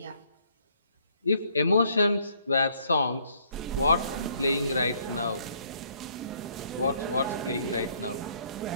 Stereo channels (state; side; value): inverted; both; correlation -0.66